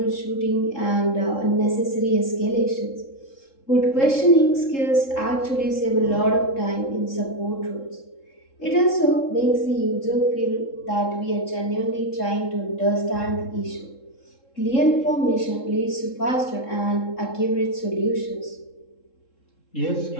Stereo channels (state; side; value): late; right; 3.7 ms